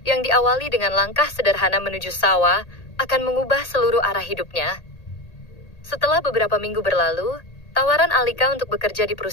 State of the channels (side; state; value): right; late; 1.8 ms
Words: yang diawali dengan langkah sederhana menuju sawah, akan mengubah seluruh arah hidupnya. Setelah beberapa minggu berlalu, tawaran Alika untuk bekerja di